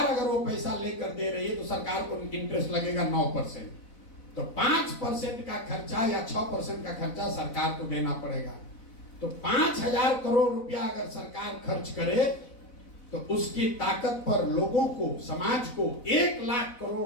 अगर वो पैसा लेकर दे रही है तो सरकार को इंटरेस्ट लगेगा 9%। तो 5% का खर्चा या 6% का खर्चा सरकार को देना पड़ेगा। तो 5,000 करोड़ रुपया अगर सरकार खर्च करे तो उसकी ताकत पर लोगों को, समाज को 1 लाख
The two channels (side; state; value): right; late; 4.0 ms